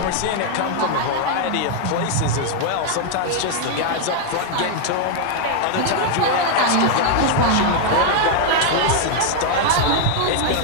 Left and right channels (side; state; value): both; different; correlation 0.00